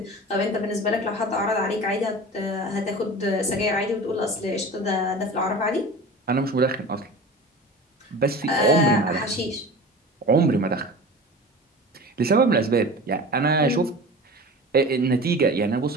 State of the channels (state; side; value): normal; both; correlation 0.36